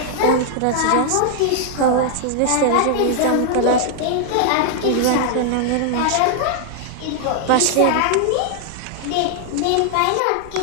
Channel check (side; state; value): both; different; correlation 0.00